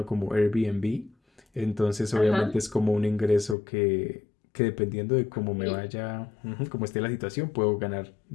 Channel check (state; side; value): drops out; right; at 3.6 s